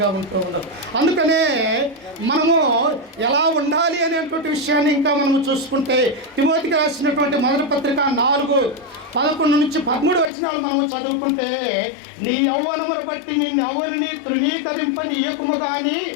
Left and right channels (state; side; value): drops out; right; at 10.3 s